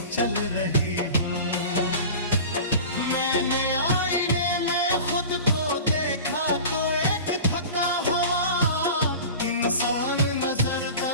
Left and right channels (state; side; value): inverted; both; correlation -0.36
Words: चल रही हूँ। मैंने आईने में खुद को देखा तो एक थका हुआ इंसान